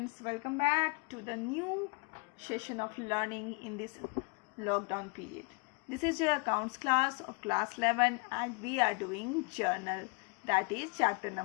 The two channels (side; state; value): right; quieter; 32.5 dB